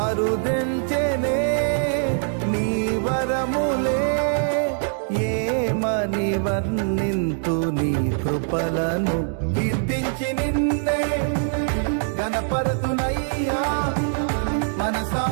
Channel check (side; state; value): left; silent; digital silence